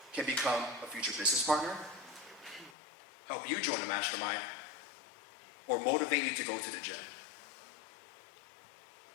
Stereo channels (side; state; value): right; drops out; at 2.8 s